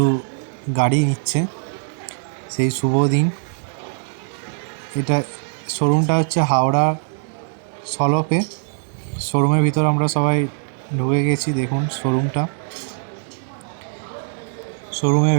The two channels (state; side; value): silent; left; 65 dB below the other